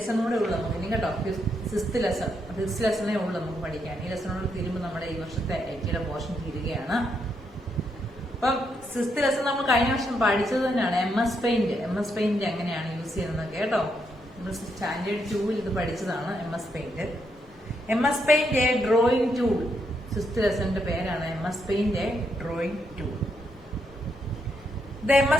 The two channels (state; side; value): normal; both; correlation 0.78